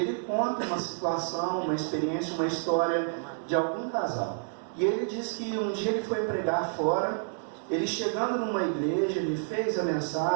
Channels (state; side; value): silent; left; digital silence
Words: conta uma situação, uma experiência, uma história de algum casal. E ele diz que um dia ele foi pregar fora, ele chegando numa igreja, ele fez a